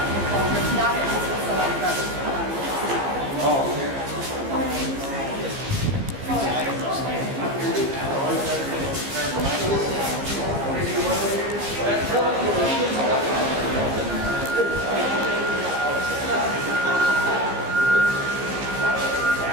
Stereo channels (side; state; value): left; late; 15 ms